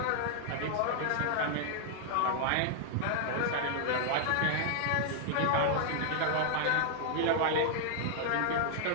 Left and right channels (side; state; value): both; different; correlation -0.01